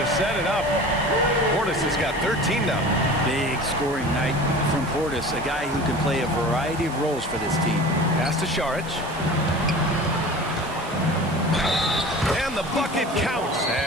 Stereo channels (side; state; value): right; noise; hiss, 18 dB below the sound